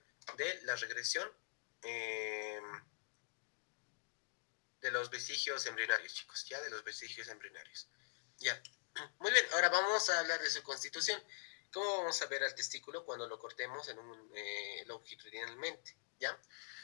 de la regresión de los vestigios embrionarios, chicos, ¿ya? De los vestigios embrionarios, ¿ya? Muy bien, ahora vamos a hablar de su constitución. ¿Cómo vamos a ver al testículo cuando lo cortemos longitudinalmente, ¿ya?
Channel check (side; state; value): right; silent; digital silence